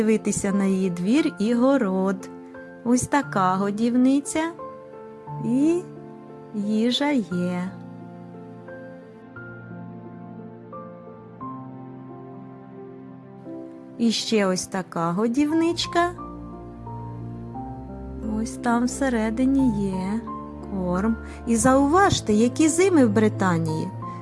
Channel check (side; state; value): both; identical; correlation 1.00